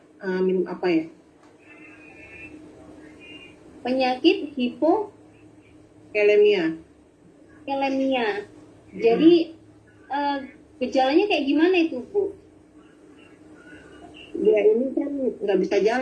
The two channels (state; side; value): identical; both; correlation 1.00